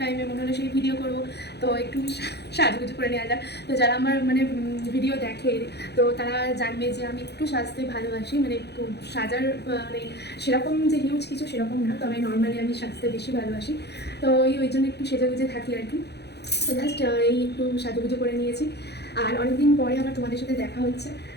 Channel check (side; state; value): right; late; 0.48 ms